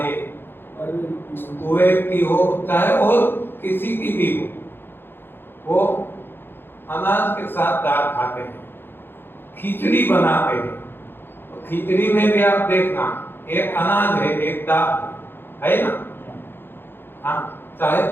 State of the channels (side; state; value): right; late; 0.10 ms